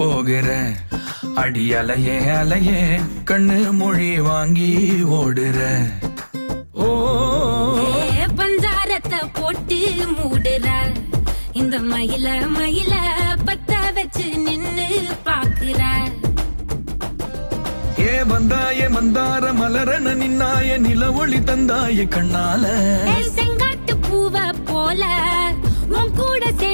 அடி அலையே அலையே கண்ணு மொழி வாங்கி ஓடுற. ஓ பஞ்சாரத்தை போட்டு மூடுற இந்த மயில மயில பத்த வச்சு நின்னு பாக்குற. ஏ வந்தாய மந்தார மலரன நின்னாய நில ஒளி தந்தாய கண்ணால. செங்காட்டு பூவ போல உன் கூட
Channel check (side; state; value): both; inverted; correlation -1.00